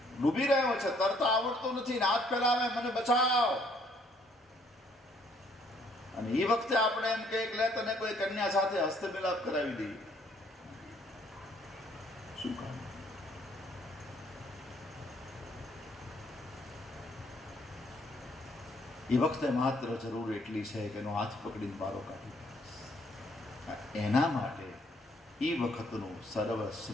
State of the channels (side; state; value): both; normal; correlation 0.65